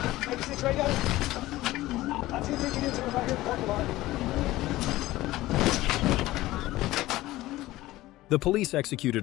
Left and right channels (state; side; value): quieter; right; 17.1 dB